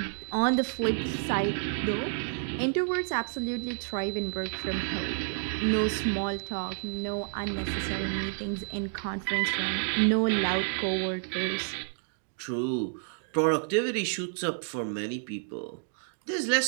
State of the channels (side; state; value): left; silent; digital silence